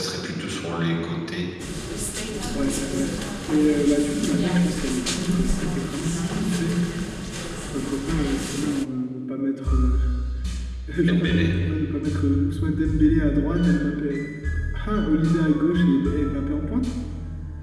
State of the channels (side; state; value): both; identical; correlation 1.00